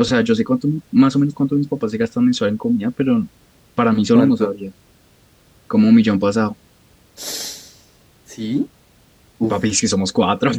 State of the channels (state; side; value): identical; both; correlation 1.00